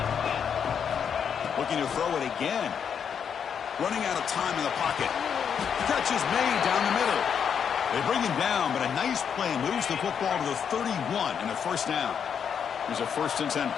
Looking to throw it again. Running out of time in the pocket. Catch is made down the middle. They bring him down, but a nice play moves the football to the 31 and a first down. Here's a 1st and 10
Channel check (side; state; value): right; quieter; 7.5 dB